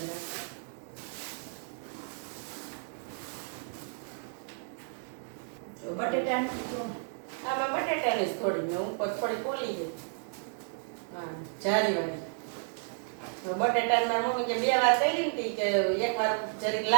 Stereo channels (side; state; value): left; silent; digital silence